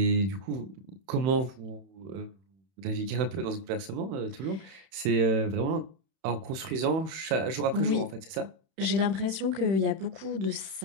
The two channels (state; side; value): late; left; 31 ms